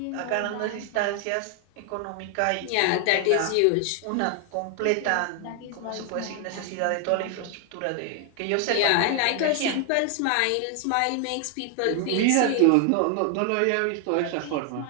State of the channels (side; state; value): both; different; correlation 0.00